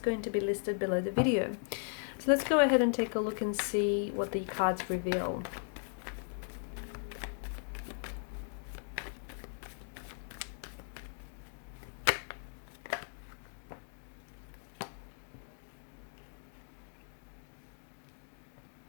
to be listed below the video. So let's go ahead and take a look and see what the cards reveal.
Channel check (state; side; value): silent; right; digital silence